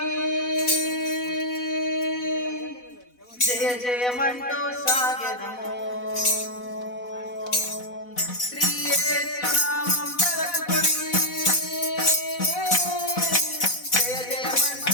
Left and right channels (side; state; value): right; late; 4.1 ms